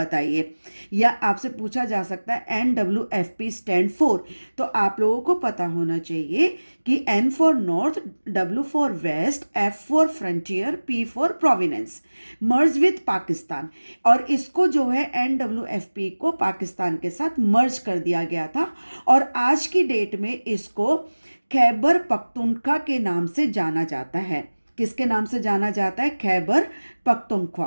या आपसे पूछा जा सकता है NWFP स्टैंड फॉर। तो आप लोगों को पता होना चाहिए कि N for north, W for west, F for frontier, P for province, merge with Pakistan. और इसको जो है NWFP को पाकिस्तान के साथ मर्ज कर दिया गया था, और आज की डेट में इसको खैबर पख्तूनख्वा के नाम से जाना जाता है। किसके नाम से जाना जाता है, खैबर पख्तूनख्वा।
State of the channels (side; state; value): both; inverted; correlation -1.00